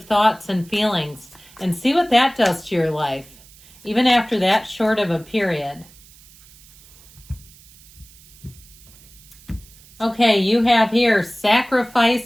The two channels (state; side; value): noise; right; hiss, 24 dB below the sound